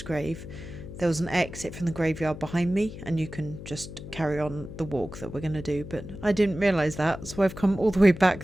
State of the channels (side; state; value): left; noise; hum, 12 dB below the sound